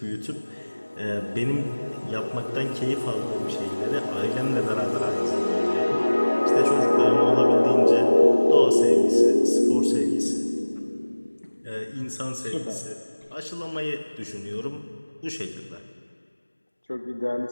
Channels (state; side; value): inverted; both; correlation -1.00